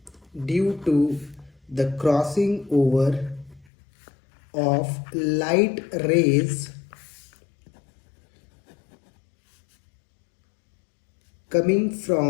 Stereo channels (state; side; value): drops out; right; at 3.7 s